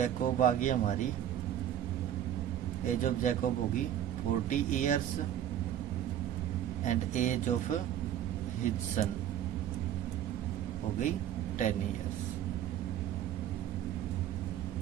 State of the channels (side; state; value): left; quieter; 10.8 dB